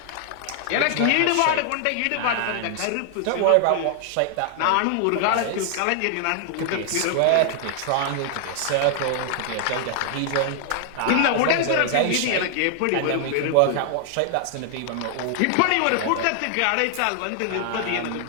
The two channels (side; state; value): both; different; correlation 0.00